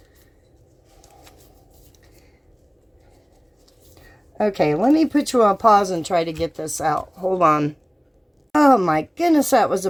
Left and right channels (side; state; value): both; identical; correlation 1.00